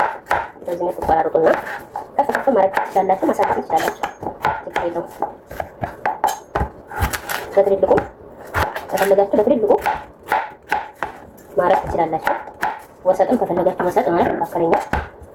በዚህ መልኩ ቆራርጡና ከፍ ማድረግ ትችላላችሁ፣ ማሳደግ ትችላላችሁ። ችግር የለውም። በትልልቁ ከፈለጋችሁ በትልልቁ ማድረግ ትችላላችሁ። ወሰጥም ከፈለጋችሁ ወሰጥ ማለት መካከለኛ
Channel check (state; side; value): identical; both; correlation 1.00